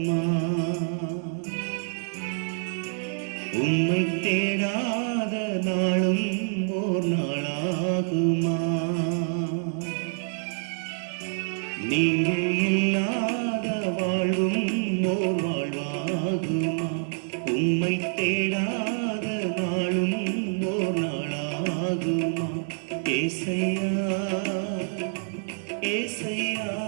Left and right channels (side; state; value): left; silent; 60 dB below the other